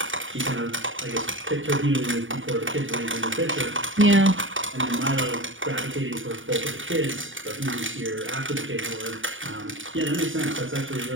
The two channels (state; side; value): late; left; 0.57 ms